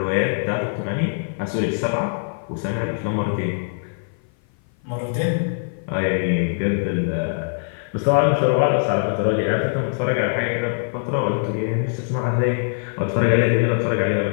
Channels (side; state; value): right; silent; 56 dB below the other